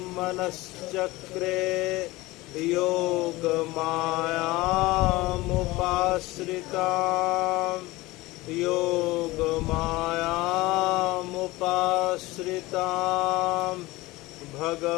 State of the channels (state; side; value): quieter; right; 20.3 dB